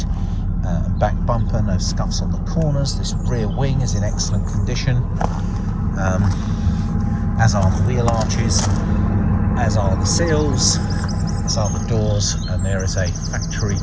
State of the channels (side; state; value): both; identical; correlation 1.00